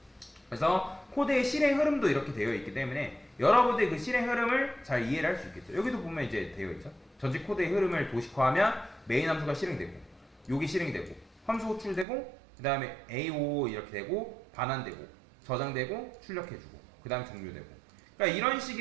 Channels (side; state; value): left; drops out; at 12.1 s